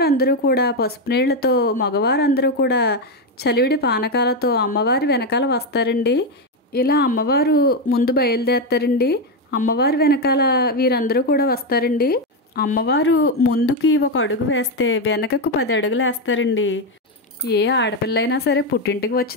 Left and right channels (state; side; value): normal; both; correlation 0.07